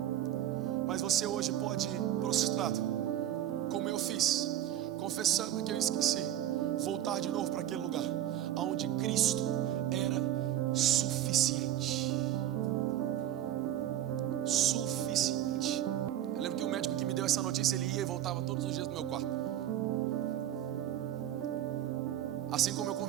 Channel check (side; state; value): left; quieter; 11.9 dB